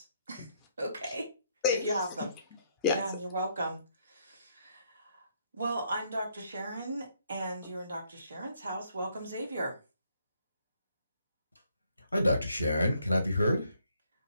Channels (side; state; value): both; inverted; correlation -0.71